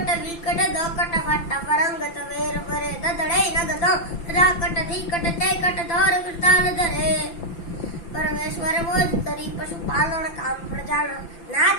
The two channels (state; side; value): late; right; 5.9 ms